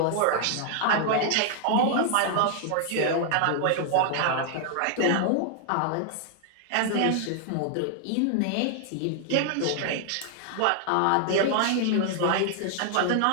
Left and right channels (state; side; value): different; both; correlation 0.00